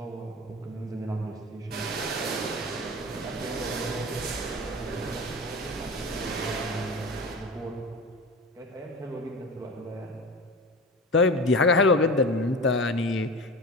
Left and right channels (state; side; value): normal; both; correlation 0.31